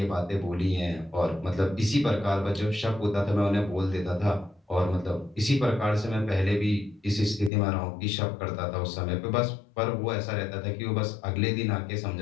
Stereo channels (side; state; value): right; drops out; at 7.5 s